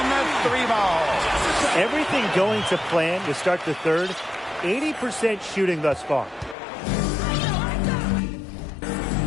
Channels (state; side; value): drops out; right; at 6.6 s